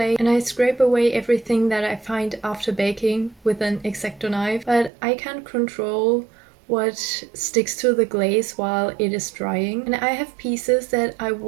and I scrape away everything that I find after baking with an X-Acto knife, but I can't control what sticks to the glaze while it is drying. And I have pieces that I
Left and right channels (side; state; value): left; drops out; at 4.9 s